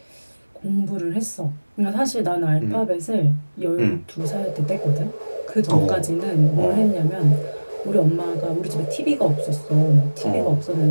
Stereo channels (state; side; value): inverted; both; correlation -1.00